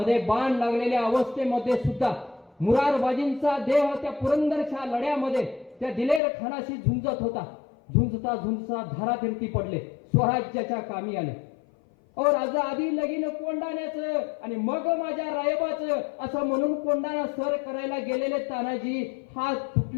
बाण लागलेल्या अवस्थेमध्ये सुद्धा मुरारबाजींचा देह त्या पुरंदरच्या लढ्यामध्ये त्या दिलेर खानाशी झुंजत होता. झुंजता झुंजता धारातीर्थी पडले, स्वराज्याच्या कामी आले. राजा आधी लगीन कोंडाण्याचं आणि मग माझ्या रायबाचं असं म्हणून कोंडाणा सर करायला गेलेले तानाजी हात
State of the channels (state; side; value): drops out; right; at 6.2 s